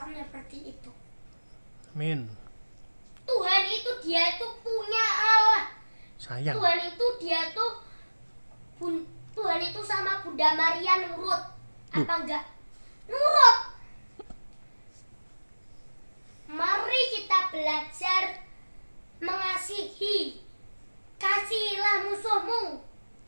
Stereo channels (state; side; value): inverted; both; correlation -1.00